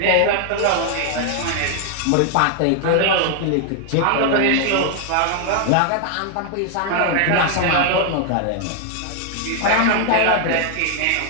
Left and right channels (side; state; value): both; different; correlation 0.00